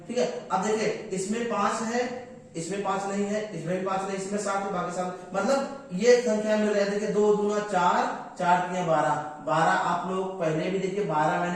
ठीक है। अब देखिए इसमें 5 है, इसमें 5 नहीं है, इसमें भी 5 नहीं, इसमें 7 है, बाकी 7, मतलब ये संख्या मिल रही है। देखिए 2 दूना 4, 4 3 12। आप लोग पहले भी देखिए 12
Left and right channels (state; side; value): identical; both; correlation 1.00